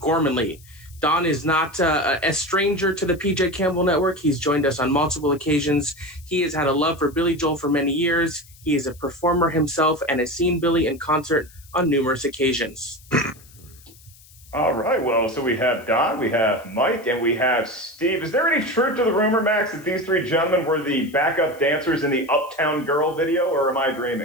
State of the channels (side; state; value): left; noise; hiss, 25 dB below the sound